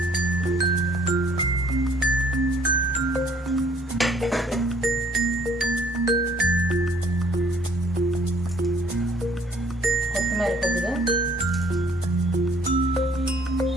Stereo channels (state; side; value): normal; both; correlation 0.60